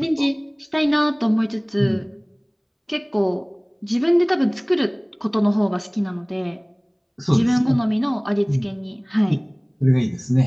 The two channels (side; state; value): both; identical; correlation 1.00